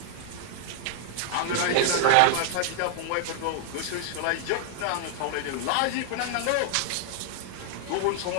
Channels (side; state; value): both; different; correlation 0.00